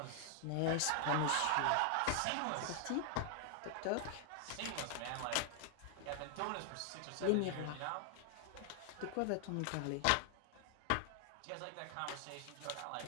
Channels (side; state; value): both; different; correlation 0.00